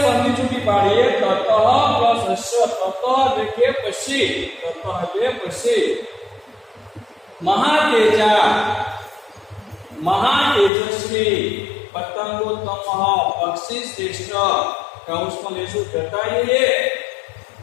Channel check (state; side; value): drops out; right; at 10.7 s